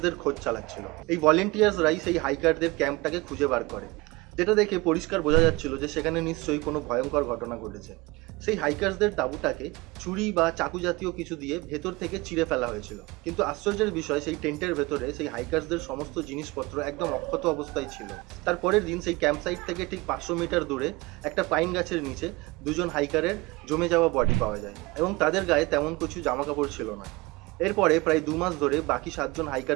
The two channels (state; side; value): quieter; left; 22.6 dB